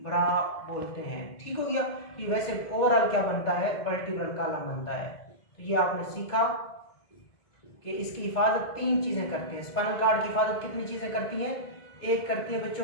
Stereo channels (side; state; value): right; late; 2.2 ms